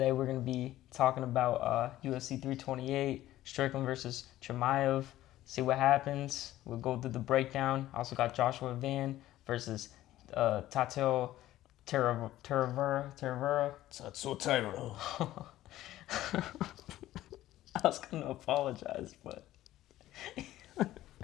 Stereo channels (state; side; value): quieter; right; 14.6 dB